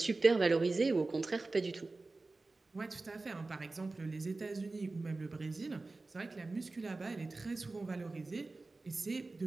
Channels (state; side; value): quieter; left; 3.4 dB